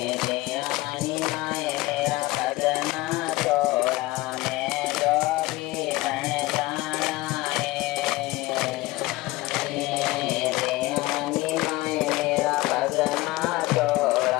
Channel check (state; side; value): quieter; right; 20.0 dB